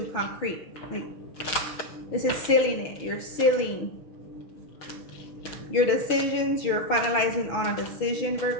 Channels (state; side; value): late; right; 6.1 ms